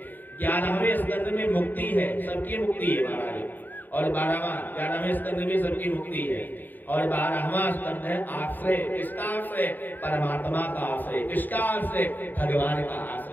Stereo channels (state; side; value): late; right; 0.089 ms